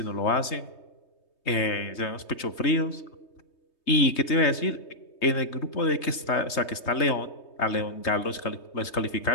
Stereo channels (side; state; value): right; late; 3.2 ms